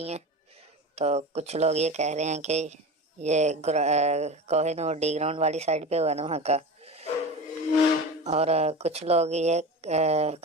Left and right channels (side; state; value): both; normal; correlation 0.29